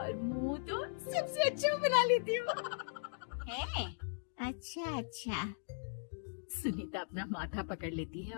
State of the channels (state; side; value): silent; right; digital silence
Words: मुंह तो सबसे अच्छा बना लेती हूँ। है? अच्छा अच्छा। सुनीता अपना माथा पकड़ लेती है